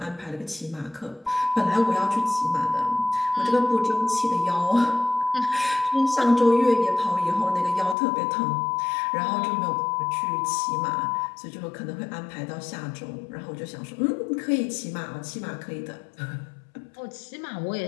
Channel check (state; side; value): drops out; right; at 8.0 s